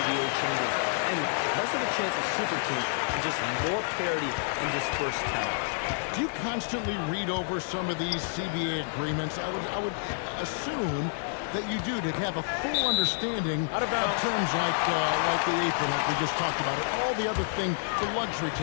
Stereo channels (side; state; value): right; silent; digital silence